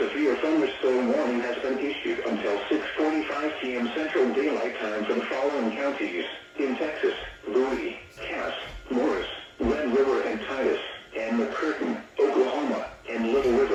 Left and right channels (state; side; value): identical; both; correlation 1.00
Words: thunderstorm warning has been issued until 6:45 p.m. Central Daylight Time for the following counties in Texas.